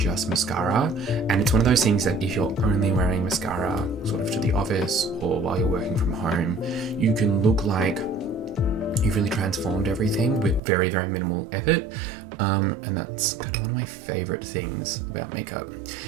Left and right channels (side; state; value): left; drops out; at 10.6 s